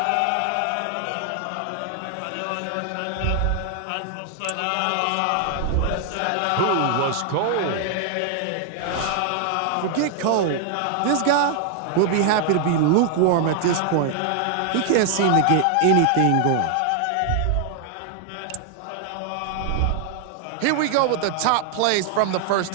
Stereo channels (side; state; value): both; different; correlation 0.00